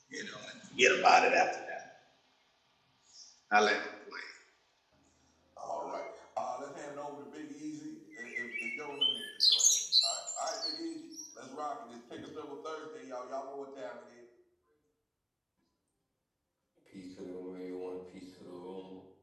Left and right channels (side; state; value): both; identical; correlation 1.00